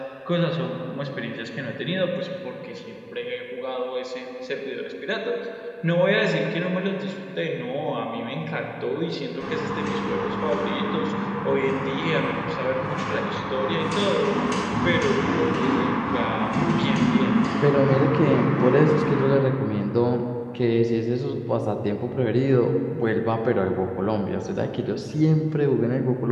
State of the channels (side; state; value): both; identical; correlation 1.00